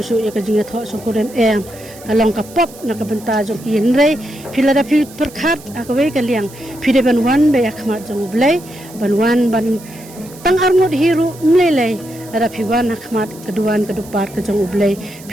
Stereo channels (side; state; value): right; noise; hiss, 20 dB below the sound